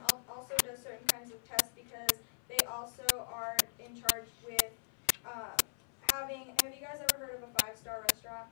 also does certain kinds of tests because they also are in charge with, have you guys ever heard of a 5-star restaurant?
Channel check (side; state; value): right; silent; 52 dB below the other